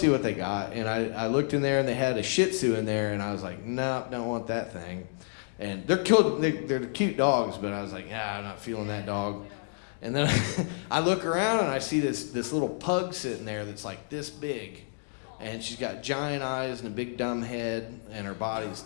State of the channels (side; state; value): right; silent; digital silence